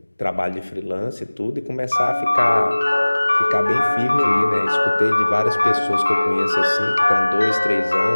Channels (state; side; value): inverted; both; correlation -1.00